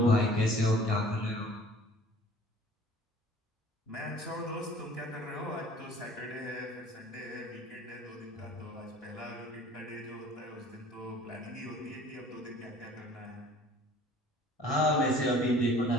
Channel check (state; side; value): normal; both; correlation 0.50